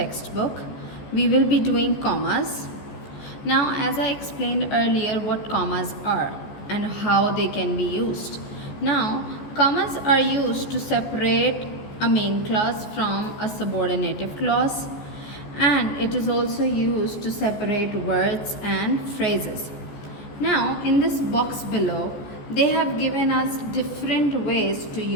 We will be doing commas. Now, as I explained earlier what commas are and how they can be used. Now, commas are used to separate a main clause from a subordinative clause, and it is also used to separate words and phrases. Now, in this box below, they have given us different ways to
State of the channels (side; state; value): right; late; 14 ms